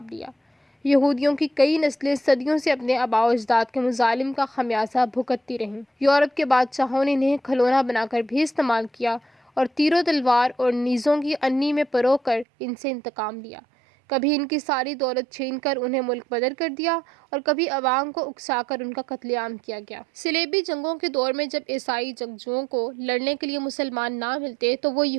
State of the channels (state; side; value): drops out; left; at 12.5 s